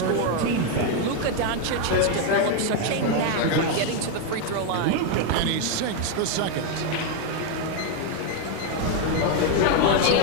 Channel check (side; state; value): both; different; correlation 0.01